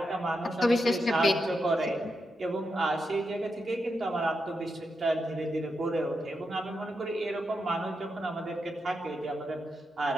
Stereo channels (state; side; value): normal; both; correlation 0.86